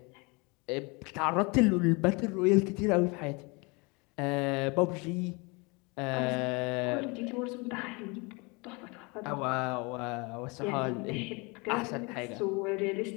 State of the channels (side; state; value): right; quieter; 28.5 dB